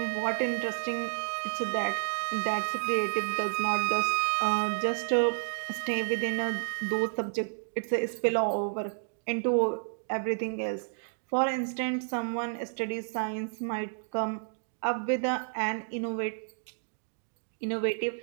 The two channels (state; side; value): silent; left; digital silence